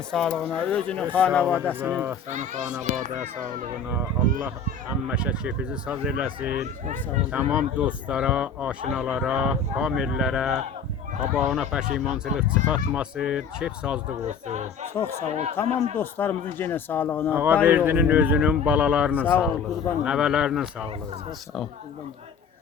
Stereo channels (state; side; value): quieter; right; 5.8 dB